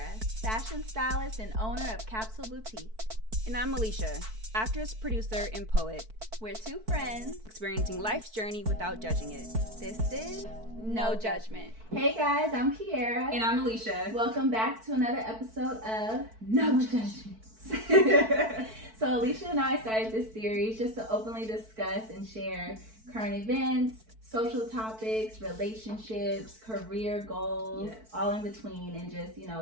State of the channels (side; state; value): left; late; 4.5 ms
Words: fashion stylist and owner of Capsule Boutique. And I'm Alicia, actress, producer, and poet. We're two friends experiencing life's journey without judging it. This is No Judgment. Hey guys, I'm Kiara. And I'm Alicia. Welcome back to another episode of No Judgment. So Alicia and I started this series just to openly discuss and share current events, social topics, relationships, career goals, all in between, and just,